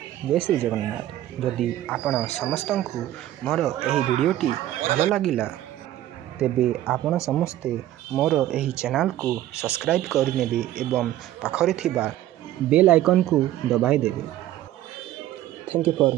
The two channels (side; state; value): left; quieter; 13.5 dB